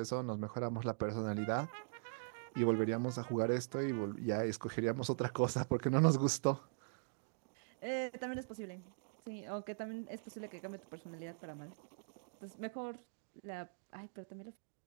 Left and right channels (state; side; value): silent; left; digital silence